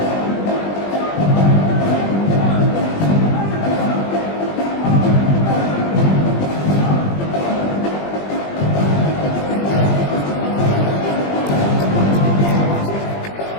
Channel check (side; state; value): right; late; 20 ms